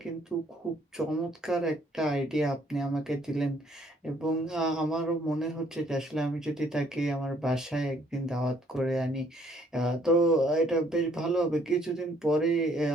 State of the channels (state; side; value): normal; both; correlation 0.64